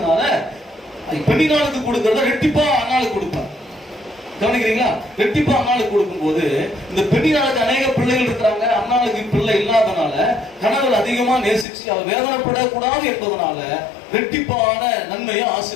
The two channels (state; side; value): drops out; right; at 11.7 s